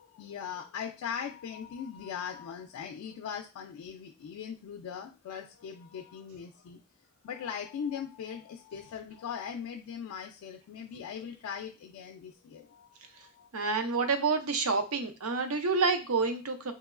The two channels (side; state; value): both; normal; correlation -0.17